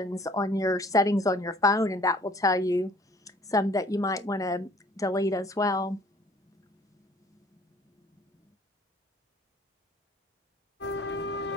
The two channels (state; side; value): normal; both; correlation 0.55